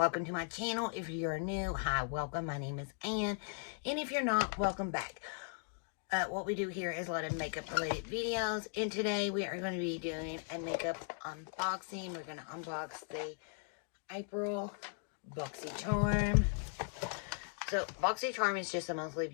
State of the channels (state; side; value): silent; right; 53 dB below the other